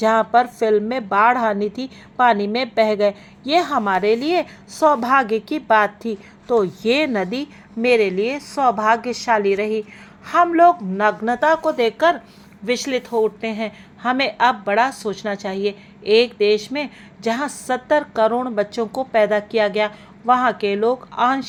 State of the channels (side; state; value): both; identical; correlation 1.00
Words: पर फिल्म में बाढ़ आनी थी, पानी में बह गए। ये हमारे लिए सौभाग्य की बात थी। तो ये नदी मेरे लिए सौभाग्यशाली रही। हम लोग नग्नता को देखकर विचलित हो उठते हैं। हमें अब बड़ा सोचना चाहिए। एक देश में जहाँ 70 करोड़ बच्चों को पैदा किया गया, वहाँ के लोग